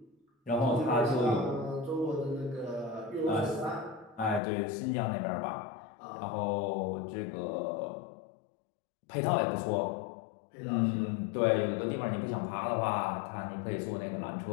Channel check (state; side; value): drops out; right; at 4.4 s